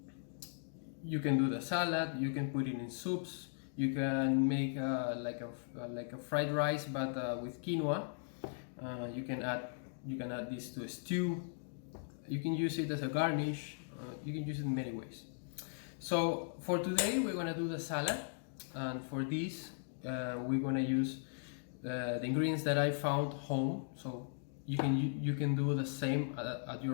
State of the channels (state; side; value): silent; right; digital silence